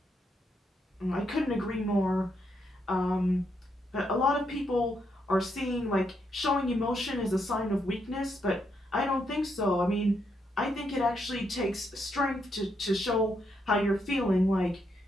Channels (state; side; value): normal; both; correlation 0.78